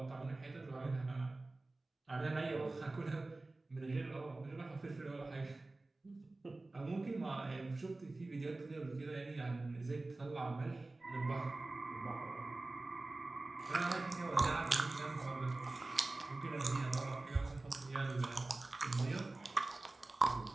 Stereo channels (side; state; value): left; quieter; 3.1 dB